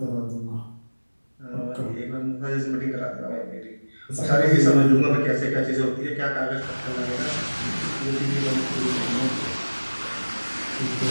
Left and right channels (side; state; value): both; inverted; correlation -1.00